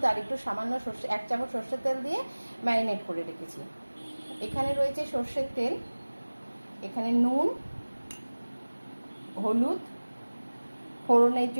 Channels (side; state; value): both; inverted; correlation -1.00